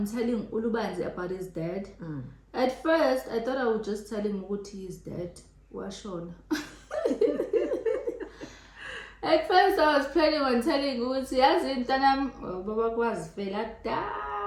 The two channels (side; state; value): both; identical; correlation 1.00